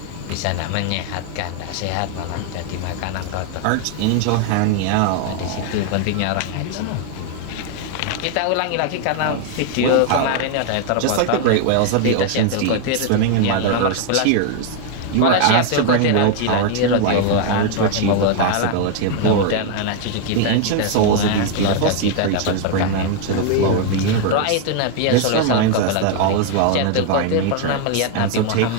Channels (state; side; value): different; both; correlation 0.00